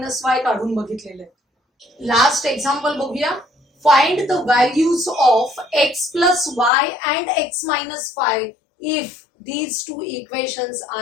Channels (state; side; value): drops out; right; at 6.7 s